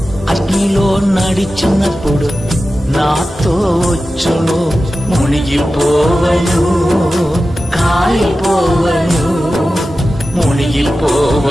అగ్నిలో నడిచినప్పుడు నాతో వచ్చును. మునిగిపోవను, కాలిపోవను,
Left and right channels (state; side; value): normal; both; correlation 0.94